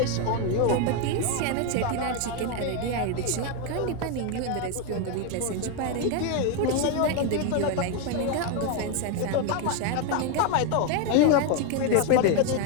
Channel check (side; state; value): both; different; correlation 0.01